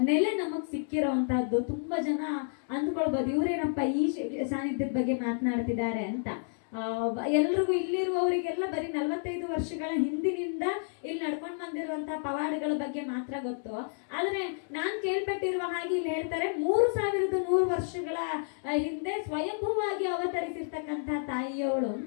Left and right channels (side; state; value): right; silent; digital silence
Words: ನೆಲೆ ನಮಗ್ ಸಿಕ್ಕಿರೋವಂತಹದ್ದು. ತುಂಬಾ ಜನ ಅಂದ್ಕೊಳ್ಬೋದು, ಇವ್ರೇನಪ್ಪ ಈ ಸಾನ್ನಿಧ್ಯದ ಬಗ್ಗೆ ಮಾತನಾಡ್ತಿದ್ದಾರೆ ಅಂತ. ಎಲ್ರಿಗೂ ಇಲ್ಲಿರುವವರಿಗೆಲ್ಲ ಬರೀ 45 ವರ್ಷಗಳ ಹಿಂದಿನಿಂದ ಇಲ್ಲಿ ನಡ್ಕೊಂಡು ಬಂದಿರುವಂತಹ ಪವಾಡಗಳ ಬಗ್ಗೆ ಮಾತ್ರ ಗೊತ್ತು. ಆದ್ರೆ ನಾನ್ ಕೇಳ್ಪಟ್ಟಿರುವ ಹಾಗೆ ಇಲ್ಲಿ ಹೇಳ್ತಾರೆ, 3100 ವರ್ಷಗಳ ಹಿಂದೆ ಸ್ವಯಂಭೂವಾಗಿ ಅವತರಿಸಿರ್ತಕ್ಕಂತಹ ತಾಯಿಯವಳು